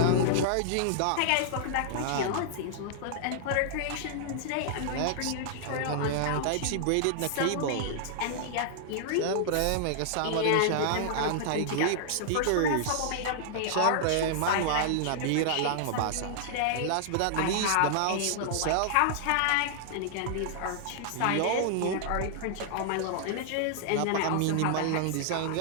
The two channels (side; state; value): both; different; correlation -0.01